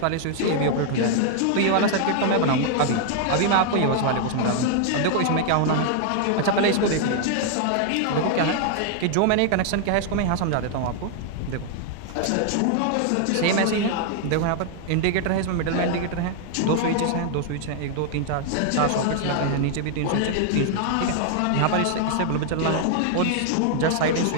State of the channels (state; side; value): different; both; correlation 0.00